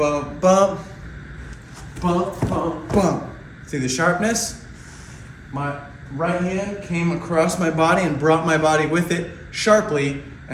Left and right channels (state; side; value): identical; both; correlation 1.00